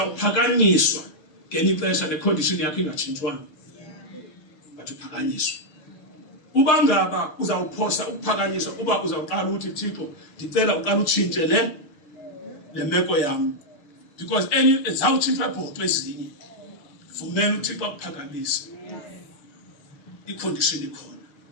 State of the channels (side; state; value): right; late; 6.5 ms